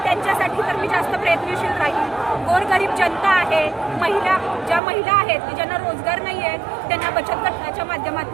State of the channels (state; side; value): drops out; left; at 4.8 s